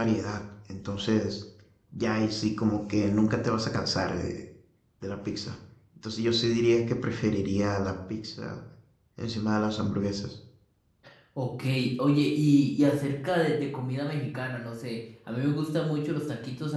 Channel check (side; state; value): both; identical; correlation 1.00